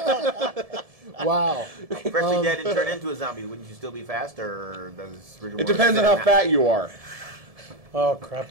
Wow. freshly dead and turn into a zombie, wouldn't you still be fast, or does rigor It mortis depends on set how in fat you are. Oh,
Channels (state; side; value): late; left; 1.7 ms